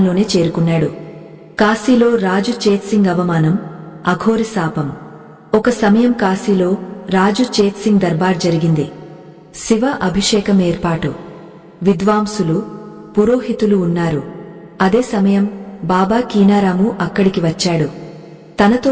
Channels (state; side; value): identical; both; correlation 1.00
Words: చేరుకున్నాడు. కాశీలో రాజు చేత్సింగ్ అవమానం, అఘోరి శాపం. ఒక సమయం కాశీలో రాజు చేత్సింగ్ దర్బార్ జరిగింది. శివ అభిషేకం ఏర్పాటు. విద్వాంసులు, పురోహితులు ఉన్నారు. అదే సమయం బాబా కీనారాము అక్కడికి వచ్చాడు.